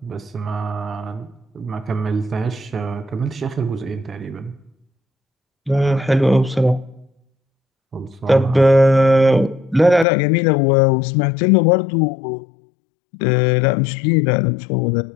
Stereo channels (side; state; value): right; drops out; at 10.1 s